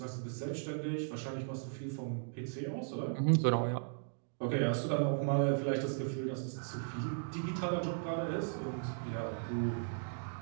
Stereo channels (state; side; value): silent; left; digital silence